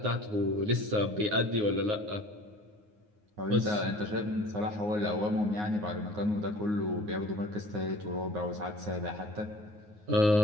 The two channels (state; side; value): late; left; 9.6 ms